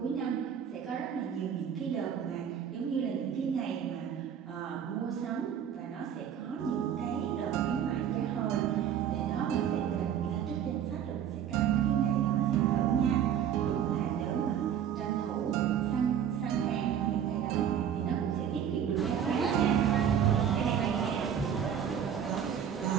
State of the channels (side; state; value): left; quieter; 8.9 dB